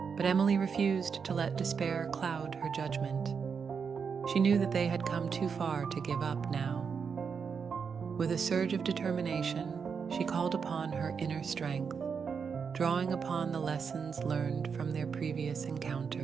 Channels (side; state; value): left; quieter; 6.1 dB